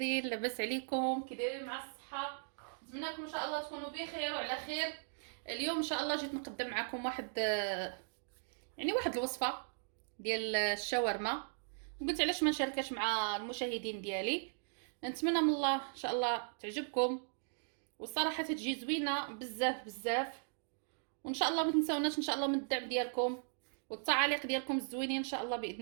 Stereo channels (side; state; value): left; silent; digital silence